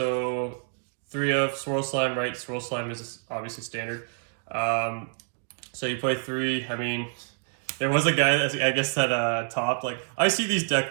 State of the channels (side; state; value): left; silent; digital silence